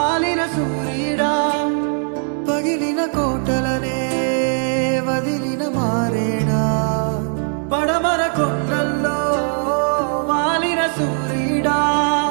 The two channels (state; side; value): silent; left; 56 dB below the other